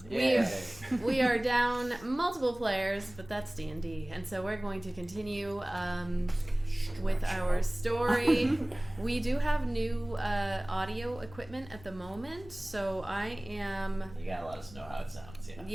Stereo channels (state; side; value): noise; left; rumble, 19 dB below the sound